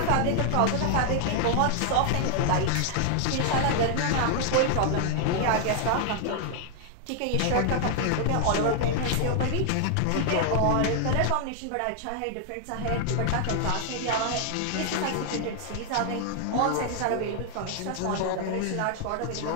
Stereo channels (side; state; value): both; different; correlation 0.00